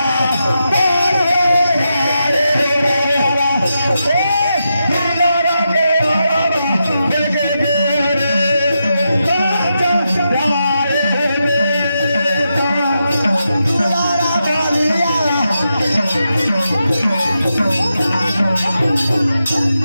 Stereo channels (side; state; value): both; inverted; correlation -0.86